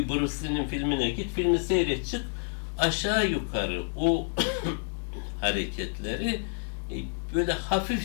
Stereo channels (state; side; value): silent; right; digital silence